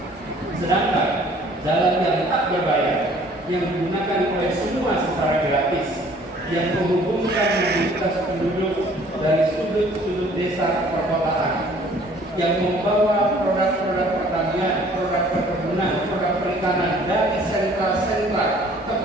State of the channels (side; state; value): both; normal; correlation 0.55